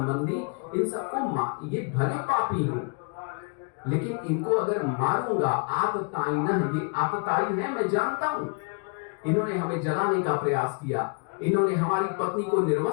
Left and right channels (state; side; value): quieter; right; 36.7 dB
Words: इन सबको ये भले पापी हों, लेकिन इनको अगर मारूंगा आततायिन, ये आततायी है मैं जानता हूं। इन्होंने हमें जलाने का प्रयास किया, इन्होंने हमारी पत्नी को